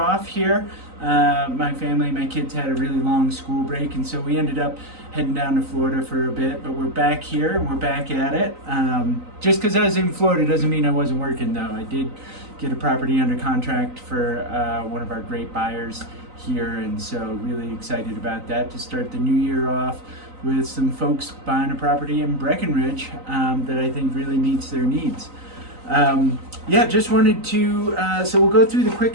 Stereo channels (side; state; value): left; late; 3.9 ms